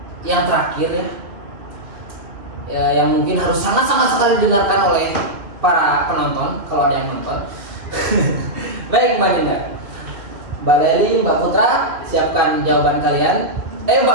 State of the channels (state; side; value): late; left; 2.4 ms